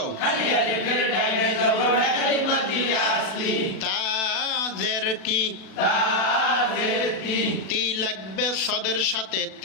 তা জের কি, তি লাগবে সদের সাথে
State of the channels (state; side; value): late; right; 36 ms